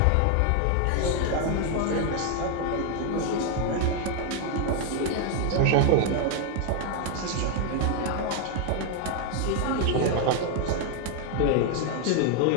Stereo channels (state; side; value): different; both; correlation 0.01